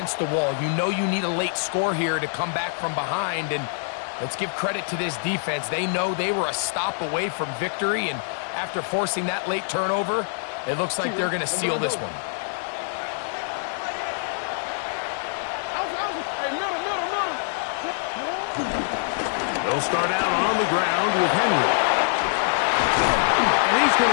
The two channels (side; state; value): right; silent; digital silence